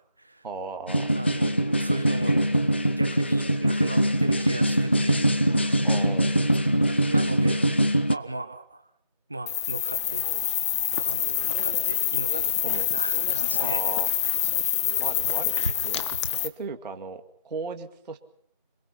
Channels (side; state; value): both; inverted; correlation -0.65